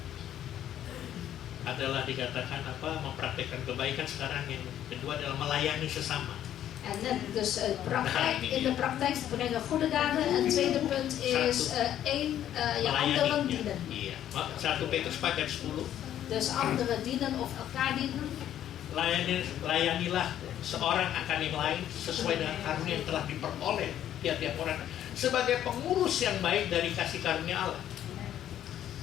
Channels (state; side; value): quieter; right; 11.2 dB